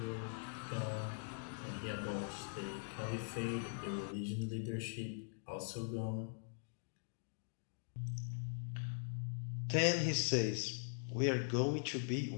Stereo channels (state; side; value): silent; right; digital silence